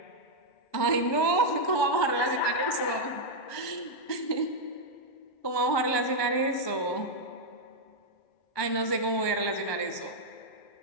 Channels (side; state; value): right; late; 1.2 ms